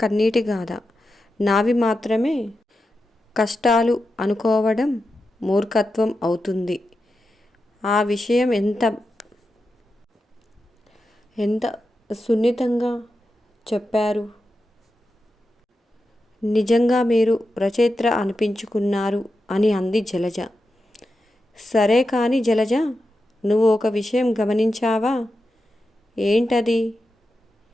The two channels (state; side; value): normal; both; correlation 0.89